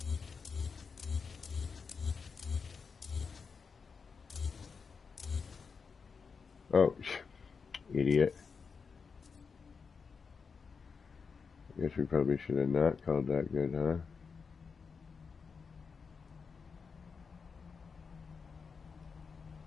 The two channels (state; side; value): quieter; right; 5.4 dB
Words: Oh, idiot. I guess we probably should have not called that good, huh?